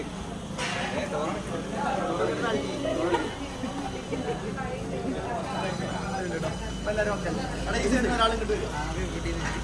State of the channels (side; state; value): both; identical; correlation 1.00